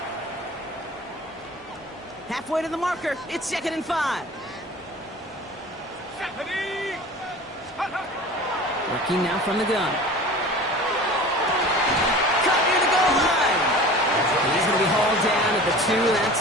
Halfway to the marker, it's 2nd and 5. Working now from the gun. Cut near the goal line. He's going to be hauled down at the 2, and that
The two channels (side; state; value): both; normal; correlation 0.39